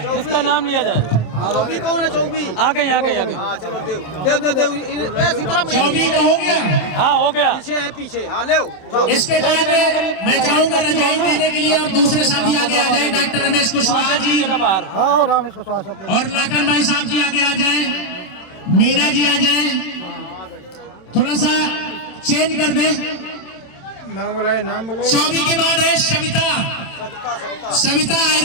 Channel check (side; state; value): right; late; 27 ms